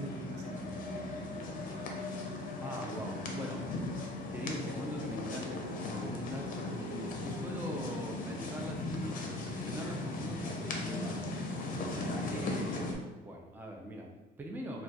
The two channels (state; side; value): normal; both; correlation 0.47